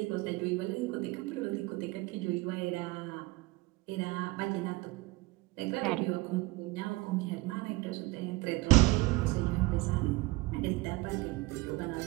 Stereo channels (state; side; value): quieter; left; 21.5 dB